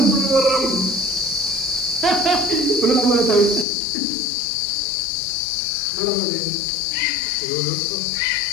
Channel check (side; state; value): right; drops out; at 3.7 s